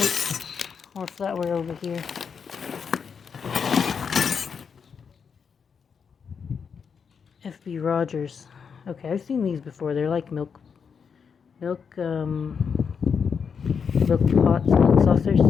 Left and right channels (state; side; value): quieter; right; 6.4 dB